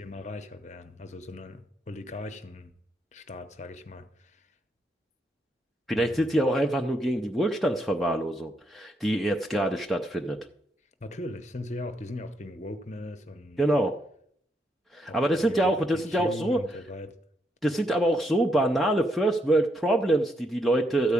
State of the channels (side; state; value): both; normal; correlation 0.77